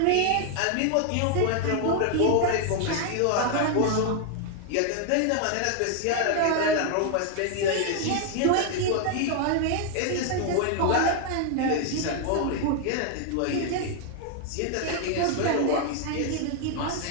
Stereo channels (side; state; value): both; different; correlation 0.00